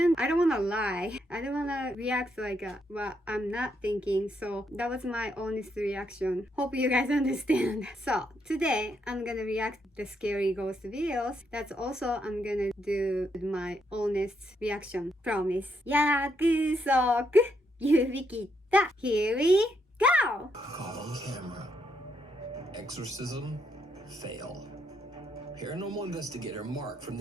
I don't wanna lie. I don't wanna react like what I'm not thinking. So that was my honest reaction. Hope you guys understand. So today I'm gonna react the scary ghost videos. That's also I'm gonna do my honest reaction. Promise. 約束指切った Here we go! Caught on camera. Exorcism fail. Paranormal investigator Mark from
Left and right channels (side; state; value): both; normal; correlation 0.77